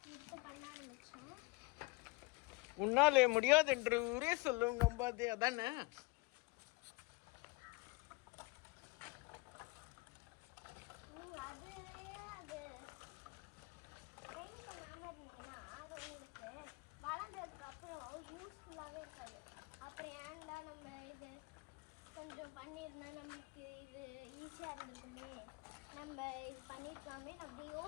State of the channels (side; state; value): right; quieter; 25.5 dB